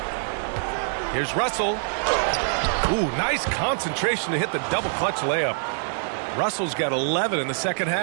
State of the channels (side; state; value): left; silent; 62 dB below the other